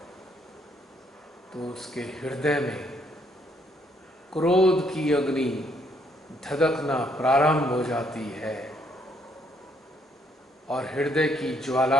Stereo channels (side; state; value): both; normal; correlation 0.70